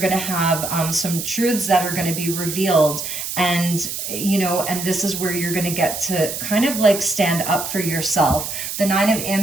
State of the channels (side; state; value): right; noise; hiss, 5 dB below the sound